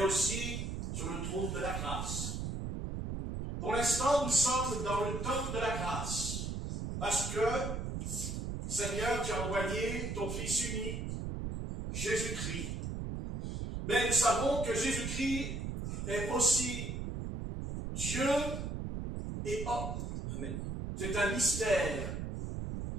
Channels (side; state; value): right; noise; rumble, 4 dB below the sound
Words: aussi sur le trône de la grâce. Pour l'instant, nous sommes dans le temps de la grâce, parce que, Seigneur, tu as envoyé ton Fils unique, Jésus-Christ. Mais nous savons que Jésus-Christ est aussi Dieu et homme. Amen. C'est un mystère.